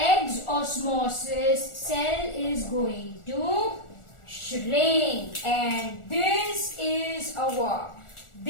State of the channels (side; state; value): right; late; 1.4 ms